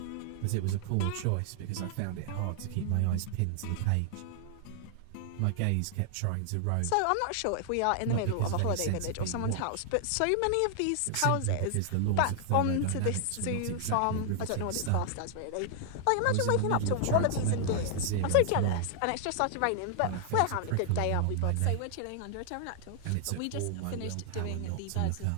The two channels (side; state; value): both; different; correlation 0.00